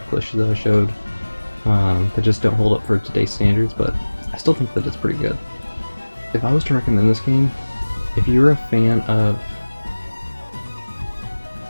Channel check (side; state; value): both; inverted; correlation -1.00